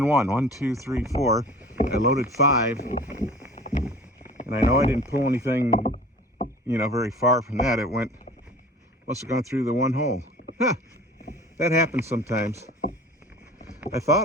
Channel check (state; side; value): normal; both; correlation 0.43